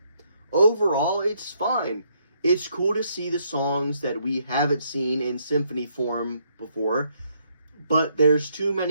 Overall, it's fine. It's cool to see the songs that we haven't seen in symphony form before, but there's too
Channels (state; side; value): inverted; both; correlation -0.72